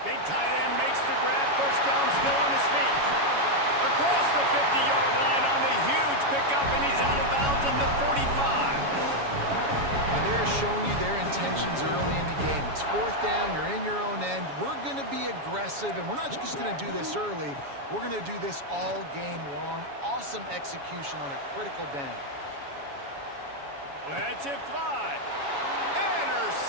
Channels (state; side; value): late; left; 7.1 ms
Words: Big tight end makes the grab. First down, still on his feet. Across the 50-yard line on the huge pickup, and he's out of bounds at the 45. And they're showing you their intentions early in the game. It's 4th down, you're in your own end. We're going to be aggressive, and we're not just going to do this early. We're going to do this all game long. Awesome execution on a critical down. Lets it fly.